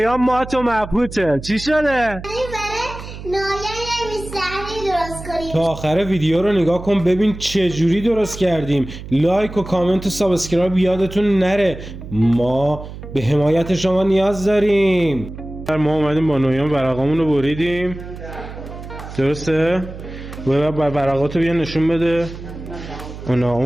ما تو مبهوته. چی شده؟ تا آخر ویدیو رو نگاه کن ببین چه جوری درست کردیم. لایک و کامنت و سابسکرایب یادتون نره، ما به حمایت شما نیاز داریم. ما اومدیم با نویان ورقامون رو بریدیم، درسته؟ ورقاتو بیا نشون بده.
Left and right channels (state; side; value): noise; right; hum, 12 dB below the sound